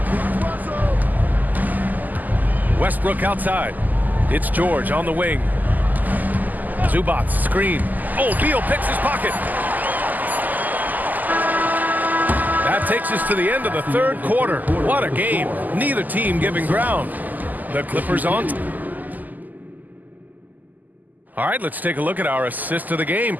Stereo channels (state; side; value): late; left; 0.083 ms